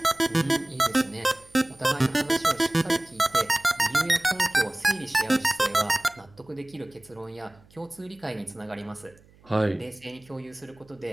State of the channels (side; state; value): right; noise; hum, 28 dB below the sound